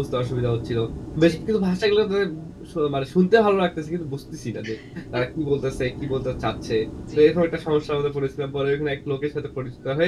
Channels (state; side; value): identical; both; correlation 1.00